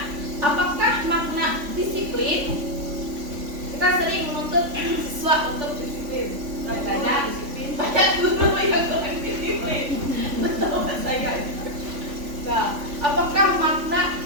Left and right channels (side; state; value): left; late; 3.5 ms